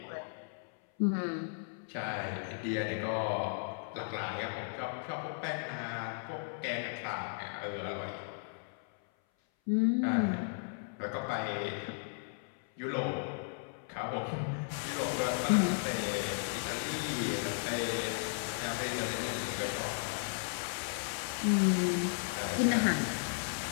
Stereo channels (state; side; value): silent; right; 54 dB below the other